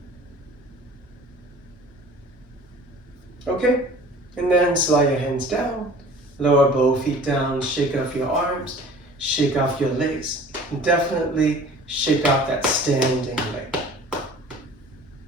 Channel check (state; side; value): normal; both; correlation 0.46